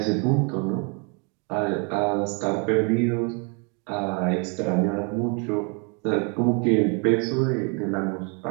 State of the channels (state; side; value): quieter; left; 35.0 dB